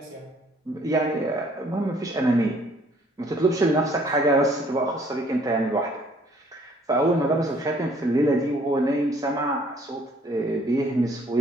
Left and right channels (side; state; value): both; normal; correlation 0.60